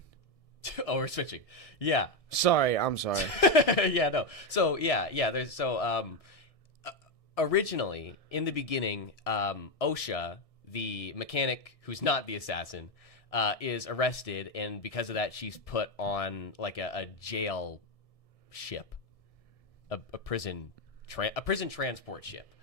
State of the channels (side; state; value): right; late; 1.6 ms